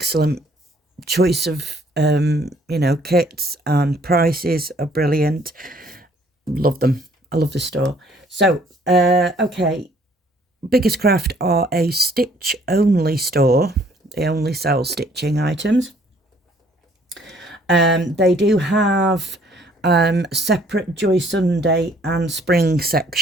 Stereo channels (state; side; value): normal; both; correlation 0.61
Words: choice of kits, and prices are brilliant. Love them. I love the store. So okay, Biggestcraft are a stitch only store. They only sell stitching items. They do have separate Joy Sunday and Spring